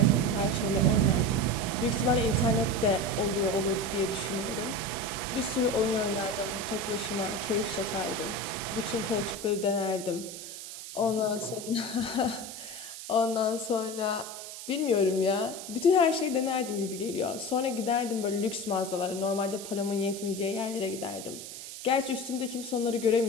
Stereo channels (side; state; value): right; noise; hiss, 11 dB below the sound